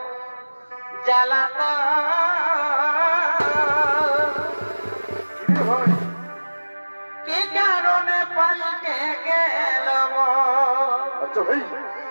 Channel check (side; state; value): both; inverted; correlation -1.00